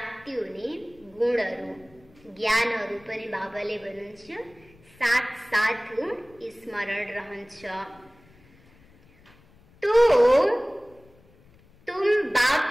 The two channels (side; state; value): left; noise; rumble, 28 dB below the sound